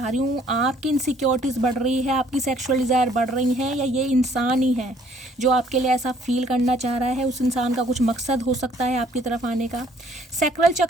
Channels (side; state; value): both; normal; correlation 0.61